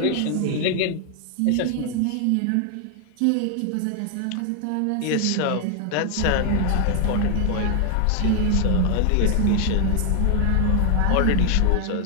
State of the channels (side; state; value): both; different; correlation 0.00